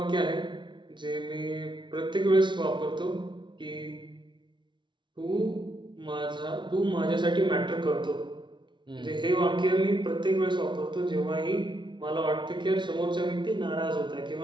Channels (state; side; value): late; left; 0.23 ms